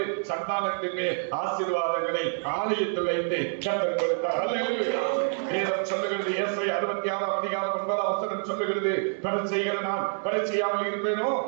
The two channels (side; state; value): left; silent; digital silence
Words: சந்தானத்தின் மேல் ஆசீர்வாதங்களை ஆலயத்தில் வைத்து கர்த்தர் கொடுத்தார். அல்லேலூயா. வேதம் சொல்லுகிறது, ஏசாயா 66 அதிகாரம் 9 வசனம் சொல்லுகிறது, பரிசெய்கிற நான் பரிசெய்யாமல் இருப்பேனோ,